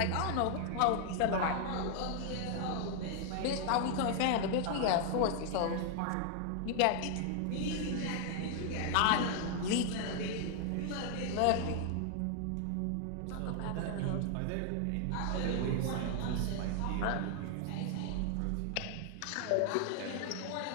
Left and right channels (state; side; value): different; both; correlation 0.00